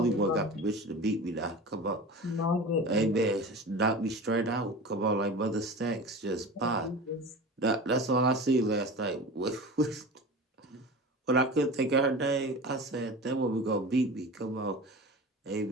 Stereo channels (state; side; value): normal; both; correlation 0.33